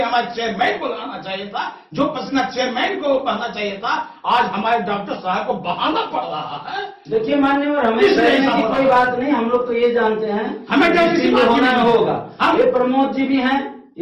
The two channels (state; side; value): identical; both; correlation 1.00